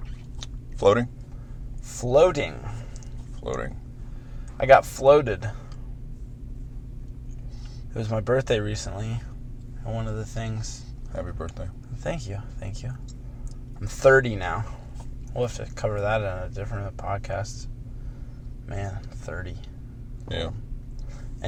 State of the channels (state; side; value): identical; both; correlation 1.00